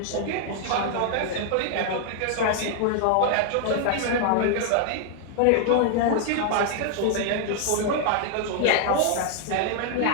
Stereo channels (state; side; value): different; both; correlation 0.00